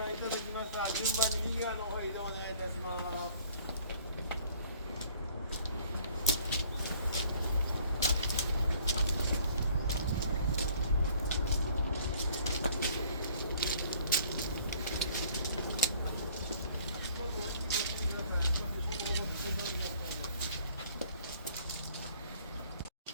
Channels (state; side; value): inverted; both; correlation -0.57